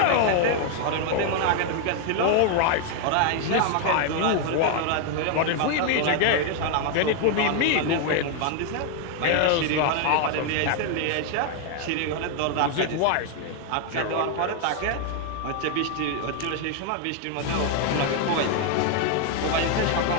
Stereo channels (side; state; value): both; different; correlation 0.00